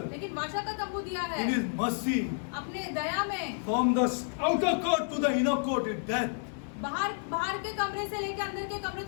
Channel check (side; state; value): right; silent; digital silence